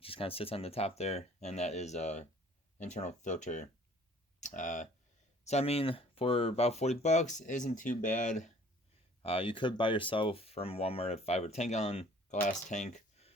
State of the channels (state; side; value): normal; both; correlation 0.53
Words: just kind of sits on the top there, and that is a internal filter. So I mean, for about 40 bucks, isn't too bad. You could buy yourself from Walmart a 5 or 10 gallon glass tank